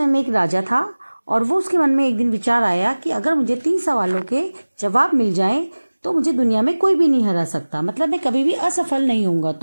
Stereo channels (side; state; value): both; inverted; correlation -1.00